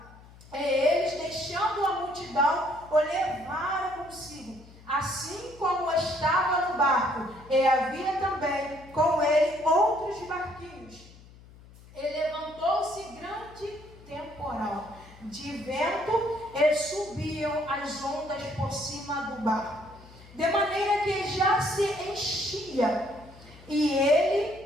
E eles, deixando a multidão, o levaram consigo, assim como estava no barco, e havia também com ele outros barquinhos. E levantou-se grande temporal de vento, e subiam as ondas por cima do barco, de maneira que já se enchia, e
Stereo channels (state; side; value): noise; left; hum, 22 dB below the sound